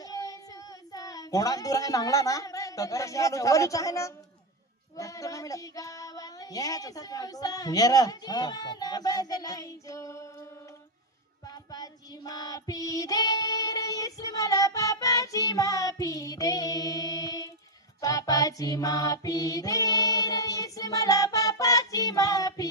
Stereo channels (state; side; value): normal; both; correlation 0.05